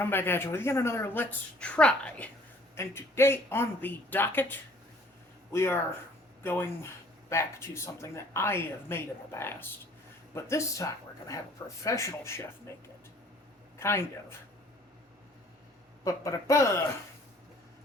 back at you with yet another Let's Try. And today on the docket, we are going back to something that I have made in the past. But this time, we're going to have a professional chef make it. Kind of. But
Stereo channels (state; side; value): normal; both; correlation 0.56